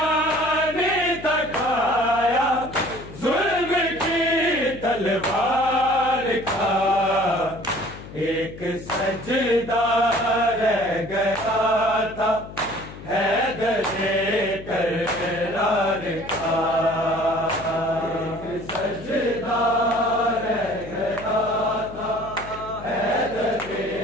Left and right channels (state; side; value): noise; left; hum, 14 dB below the sound